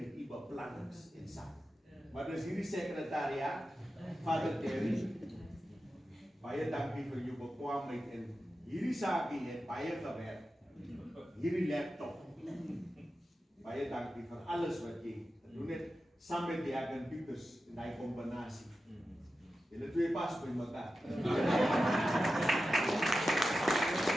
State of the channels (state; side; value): normal; both; correlation 0.92